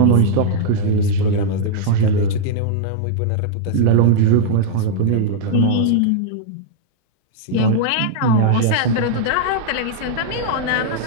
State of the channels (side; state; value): both; different; correlation -0.01